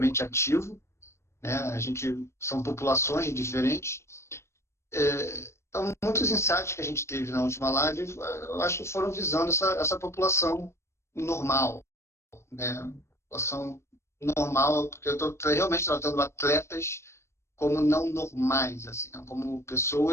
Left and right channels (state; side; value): late; right; 0.13 ms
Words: ativo, né? A gente são populações diferentes. Então, muitos insights que a gente teve na última live, eu acho que foram visando essa população normal, né? População normal, porque eu estou realmente tratando atletas como não normais, assim, né? Como